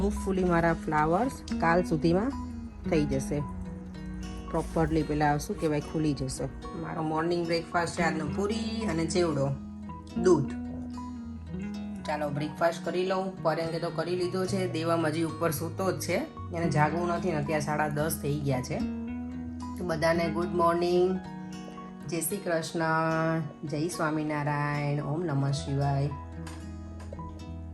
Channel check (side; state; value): both; identical; correlation 1.00